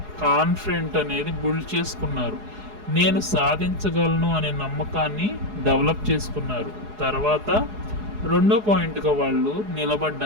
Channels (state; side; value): late; left; 4.8 ms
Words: కాన్ఫిడెంట్ అనేది బిల్డ్ చేసుకున్నారు, నేను సాధించగలను అనే నమ్మకాన్ని డెవలప్ చేసుకున్నారు. తర్వాత రెండో పాయింట్గా వాళ్ళు